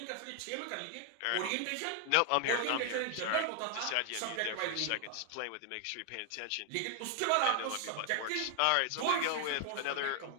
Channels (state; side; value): different; both; correlation 0.00